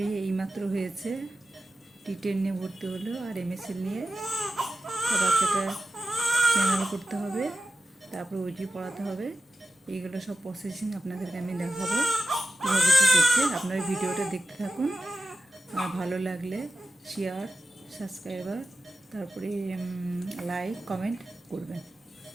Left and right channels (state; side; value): normal; both; correlation 0.90